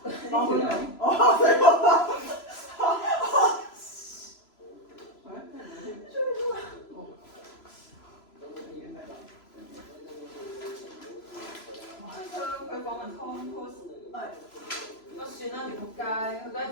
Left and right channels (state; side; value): late; right; 3.0 ms